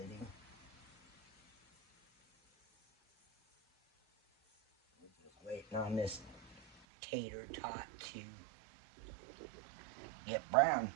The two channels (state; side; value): drops out; left; at 6.8 s